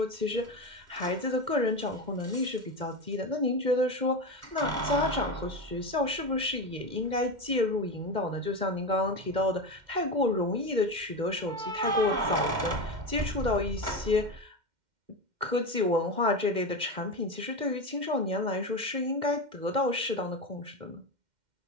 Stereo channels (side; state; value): left; late; 2.1 ms